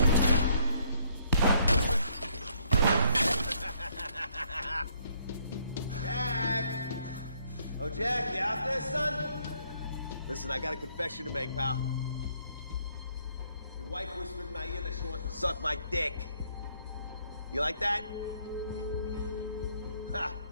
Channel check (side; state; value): both; inverted; correlation -0.68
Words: Jack! Oh, Jack, you out there, son? Listen, I got a confession to make, pal. Your wife whispered in my ear that she wants to suck my dick. You like that? Ha!